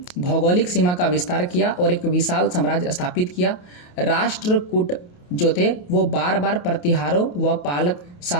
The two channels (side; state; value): right; late; 28 ms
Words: भौगोलिक सीमा का विस्तार किया और एक विशाल साम्राज्य स्थापित किया। राष्ट्रकूट जो थे वो बार बार प्रतिहारों व पालक